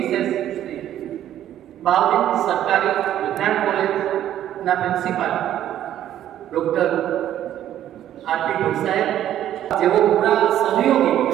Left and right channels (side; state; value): left; quieter; 11.6 dB